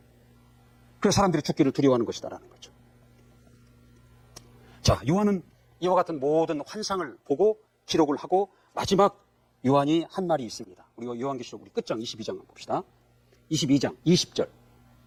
그래서 사람들이 죽기를 두려워하는 것이다라는 거죠. 자, 요한은 이와 같은 모든 환상을 보고 기록을 하고 마지막 요한이 한 말이 있습니다. 우리 요한계시록 우리 끝장 22장 한번 봅시다. 22장 20절.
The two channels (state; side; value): identical; both; correlation 1.00